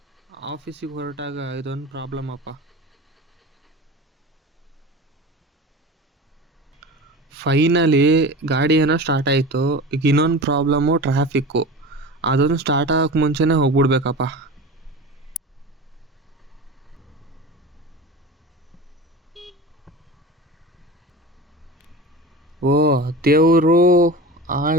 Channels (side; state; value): both; normal; correlation 0.31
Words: ಆಫೀಸಿಗೆ ಹೊರಟಾಗ ಇದೊಂದು ಪ್ರಾಬ್ಲಮ್ ಅಪ್ಪ. ಫೈನಲಿ ಗಾಡಿ ಏನೋ ಸ್ಟಾರ್ಟ್ ಆಯಿತು. ಈಗ ಇನ್ನೊಂದು ಪ್ರಾಬ್ಲಮ್ಮು ಟ್ರಾಫಿಕ್ಕು. ಅದೊಂದು ಸ್ಟಾರ್ಟ್ ಆಗೋಕ್ಕೆ ಮುಂಚೆನೇ ಹೋಗ್ಬಿಡ್ಬೇಕಪ್ಪ. ಓ ದೇವರು,